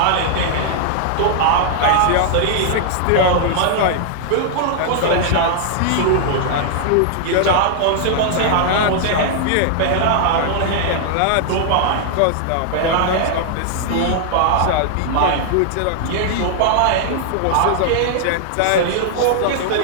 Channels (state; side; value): different; both; correlation -0.01